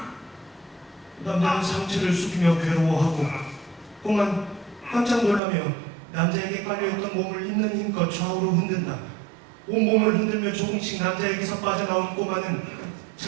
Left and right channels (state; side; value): drops out; left; at 5.4 s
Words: 남자는 상체를 숙이며 괴로워하고 꼬만 깜짝 놀라며 남자에게 깔려있던 몸을 있는 힘껏 좌우로 흔든다. 온몸을 흔들며 조금씩 남자에게서 빠져나온 꼬마는